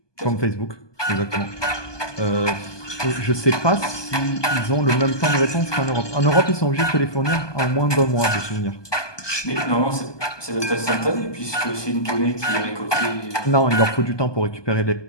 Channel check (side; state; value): right; late; 1.2 ms